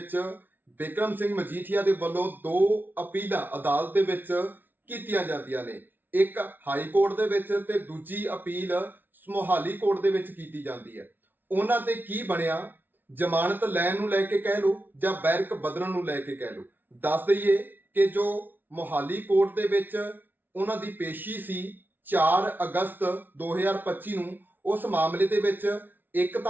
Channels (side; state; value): left; late; 0.090 ms